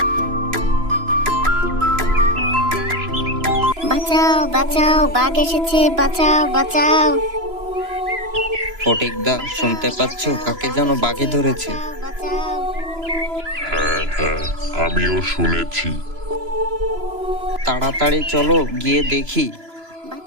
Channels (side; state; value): left; late; 3.0 ms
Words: বাঁচাও বাঁচাও, বাঘ এসেছে, বাঁচাও বাঁচাও। ফটিকদা, শুনতে পাচ্ছ? কাকে যেন বাঘে ধরেছে। বাঁচাও। হ্যাঁ হ্যাঁ, আমিও শুনেছি। তাড়াতাড়ি চলো, গিয়ে দেখি।